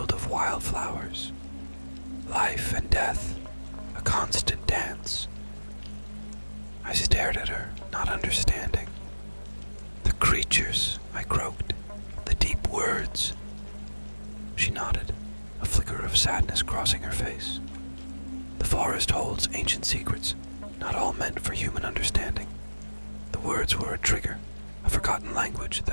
of wildflowers. Life and death, a constant dance. I stared at her, not understanding. "The creatures," I croaked, "the deep words." She nodded, a flicker of sadness crossing her face. "The forest holds ancient secrets, not all meant for human understanding. The words were a trigger, a forgotten language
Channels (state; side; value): inverted; both; correlation -1.00